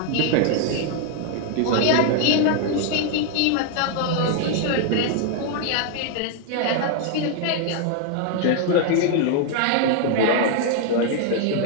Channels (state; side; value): different; both; correlation 0.00